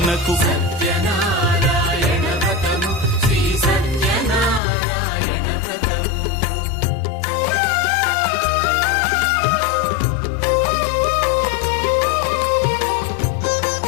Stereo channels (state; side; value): drops out; right; at 4.6 s